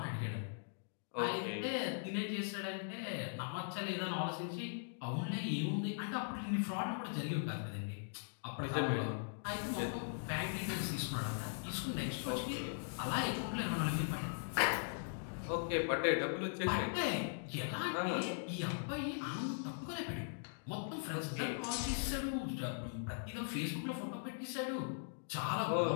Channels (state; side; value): silent; right; digital silence